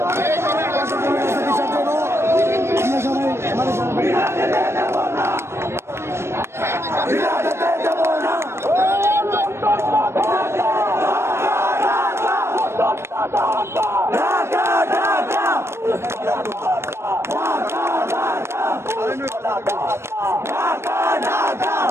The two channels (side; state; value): left; late; 0.13 ms